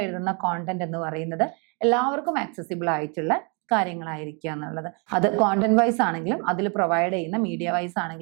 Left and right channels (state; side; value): quieter; left; 34.9 dB